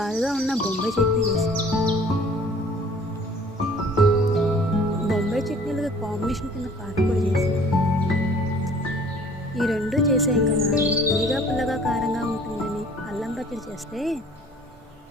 ఉన్న బొంబాయి చట్నీ వేసి బొంబాయి చట్నీలకి కాంబినేషన్ కింద కారపొడి చేసి ఈ రెండు చేసాం కదా అని తీగా పుల్లగా కారంగా ఉంటుందని అల్లం పచ్చడి చేస్తే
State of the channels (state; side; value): normal; both; correlation 0.52